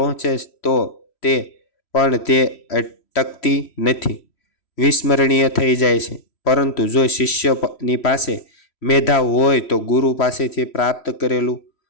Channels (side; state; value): right; late; 3.1 ms